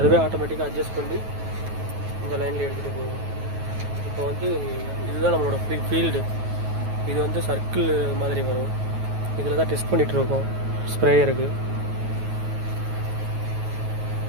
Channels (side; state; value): left; late; 9.3 ms